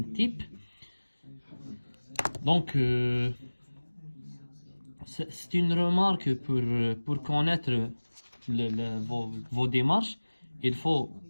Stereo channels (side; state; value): both; inverted; correlation -1.00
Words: type. Donc c'est une remarque pour connaître vos démarches. Il faut